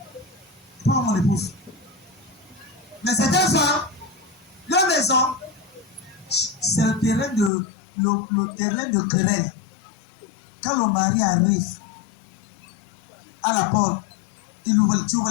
Pas mon épouse. Mais c'est un soir, la maison, c'est le terrain de querelle. Quand le mari arrive à la porte, tu ouvres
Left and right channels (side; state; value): right; drops out; at 7.5 s